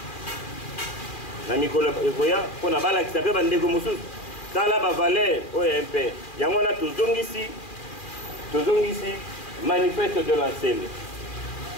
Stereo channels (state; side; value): late; right; 2.4 ms